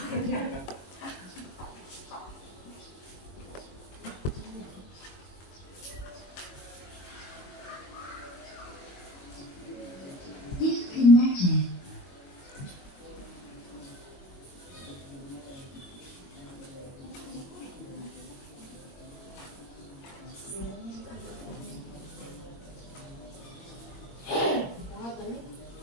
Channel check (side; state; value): right; late; 22 ms